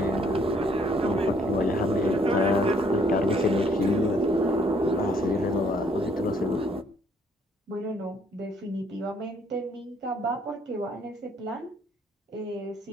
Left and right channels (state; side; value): normal; both; correlation 0.65